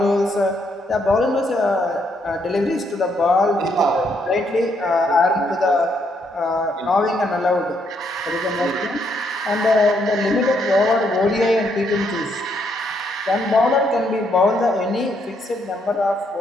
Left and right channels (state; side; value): normal; both; correlation 0.74